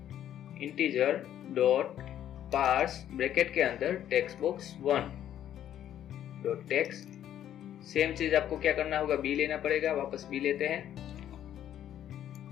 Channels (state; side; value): quieter; right; 11.0 dB